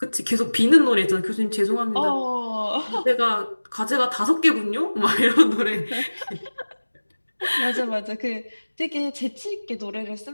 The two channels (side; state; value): both; inverted; correlation -1.00